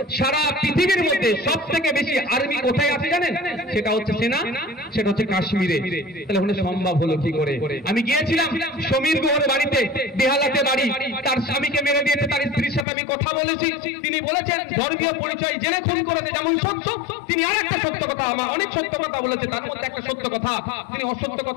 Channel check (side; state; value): right; drops out; at 12.9 s